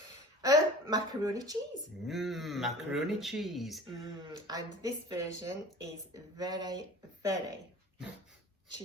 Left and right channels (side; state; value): both; normal; correlation 0.41